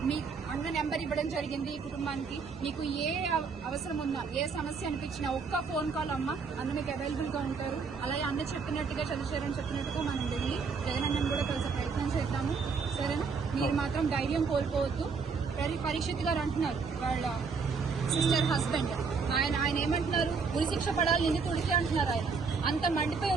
మీ అన్న నెంబర్ ఇవ్వడం జరిగింది ఈ కుటుంబానికి. మీకు ఏ అవసరం ఉన్నా, ఏ సమస్య అనిపించినా ఒక్క ఫోన్ కాల్ అమ్మ అన్న మీకు అవైలబుల్ గా ఉంటారు. అలాగే అన్న చెప్పినట్టుగా చంద్రశేఖర్ చెప్పినట్టుగా మనం వెళ్ళి జగనన్నను కూడా కలిసే ప్రయత్నం చేద్దాము. సరేనా? మీరు మాత్రం ధైర్యం కోల్పోవద్దు. పరీక్షిత్ గారు అంటున్నారు వాళ్ళ సిస్టర్ హస్బెండ్, ఆయన ఏమంటున్నారు, ఉరిశిక్ష పడాలి నిందితుడికి అంటున్నారు. ఆయన అంత మండిపోయి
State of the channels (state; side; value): quieter; left; 5.2 dB